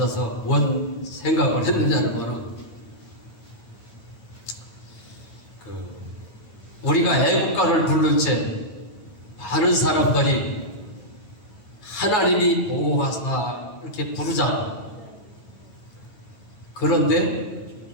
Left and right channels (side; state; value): right; late; 9.4 ms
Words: 뭔 생각을 했느냐는 우리가 애국가를 부를 때 많은 사람들이 하나님이 보호하사 이렇게 부르잖아. 그런데